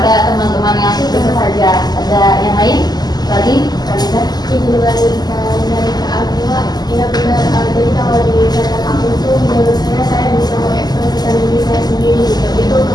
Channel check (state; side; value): late; right; 0.20 ms